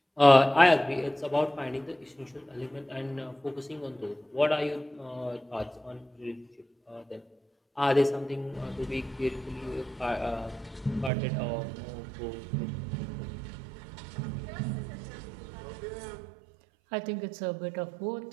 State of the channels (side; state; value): left; drops out; at 11.1 s